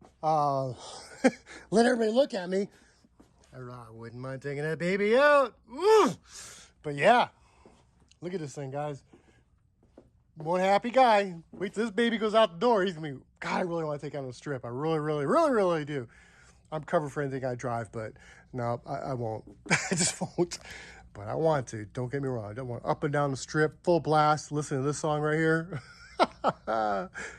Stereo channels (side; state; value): both; identical; correlation 1.00